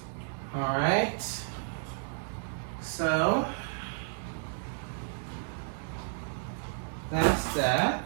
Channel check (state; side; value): silent; left; digital silence